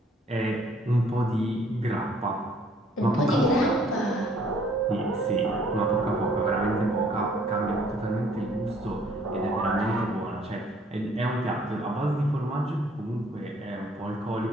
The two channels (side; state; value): both; normal; correlation 0.61